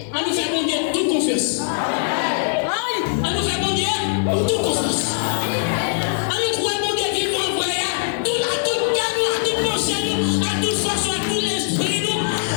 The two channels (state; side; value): silent; right; digital silence